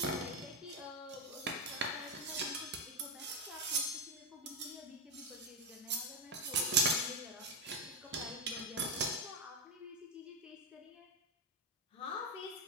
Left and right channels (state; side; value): normal; both; correlation 0.08